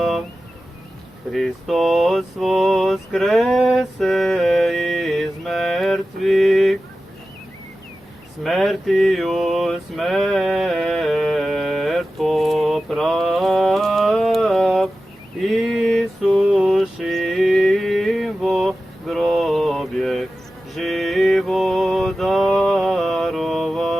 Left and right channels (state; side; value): normal; both; correlation 0.94